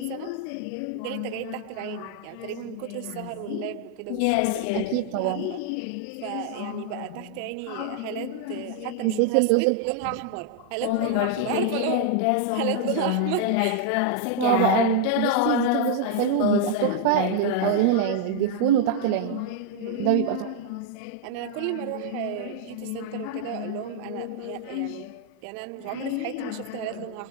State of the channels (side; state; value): both; different; correlation 0.00